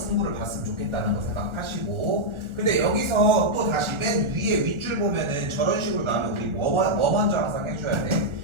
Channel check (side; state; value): left; late; 1.4 ms